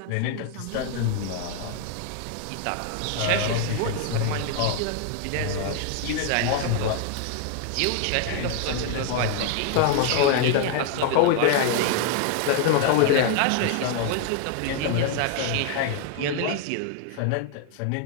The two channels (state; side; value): different; both; correlation 0.00